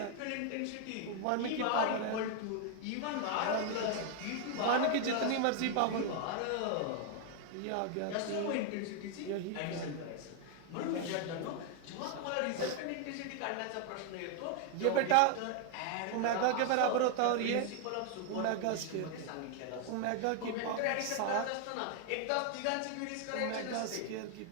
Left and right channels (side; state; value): both; different; correlation 0.00